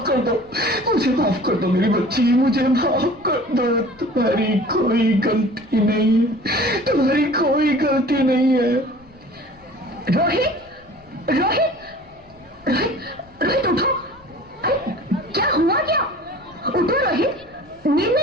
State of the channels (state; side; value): noise; left; rumble, 28 dB below the sound